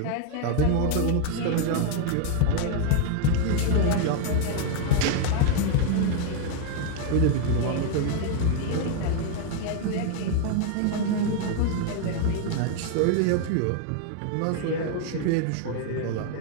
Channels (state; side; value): different; both; correlation 0.00